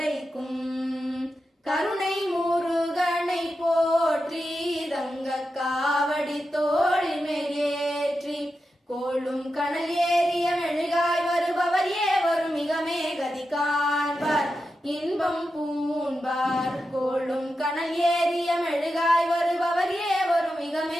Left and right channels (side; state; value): both; normal; correlation 0.90